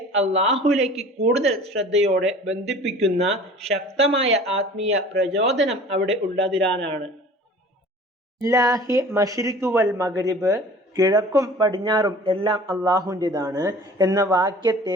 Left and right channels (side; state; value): both; normal; correlation 0.45